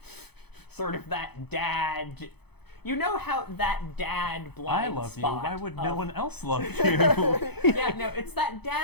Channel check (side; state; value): right; late; 0.98 ms